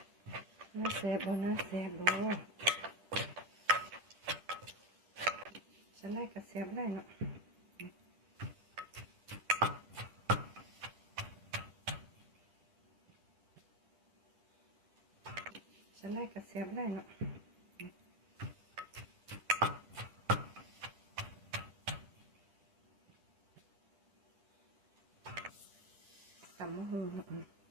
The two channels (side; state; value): left; late; 10 ms